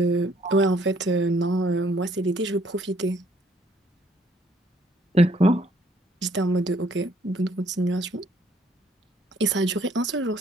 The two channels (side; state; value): both; normal; correlation 0.64